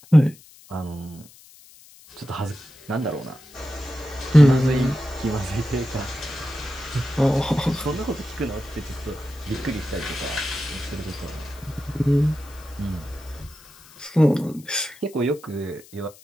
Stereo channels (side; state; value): left; noise; hiss, 23 dB below the sound